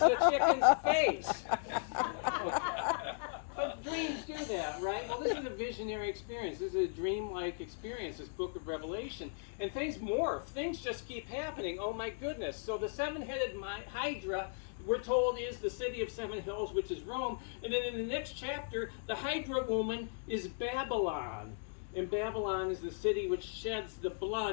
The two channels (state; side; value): silent; right; digital silence